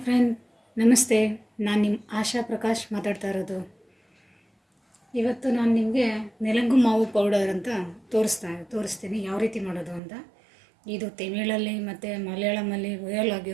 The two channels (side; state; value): left; drops out; at 10.0 s